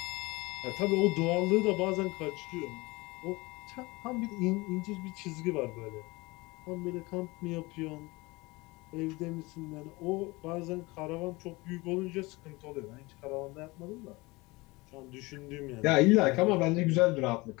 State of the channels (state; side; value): quieter; right; 23.3 dB